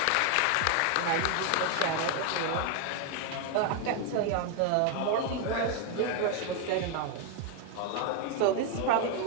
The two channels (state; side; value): different; both; correlation 0.01